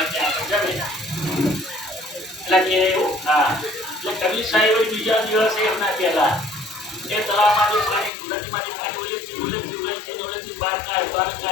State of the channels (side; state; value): right; drops out; at 8.1 s